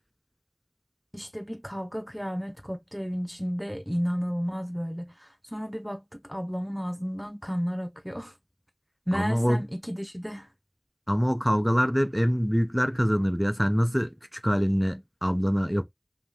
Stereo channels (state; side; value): identical; both; correlation 1.00